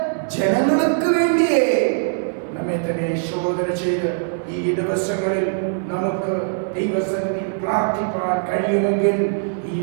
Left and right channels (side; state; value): left; silent; digital silence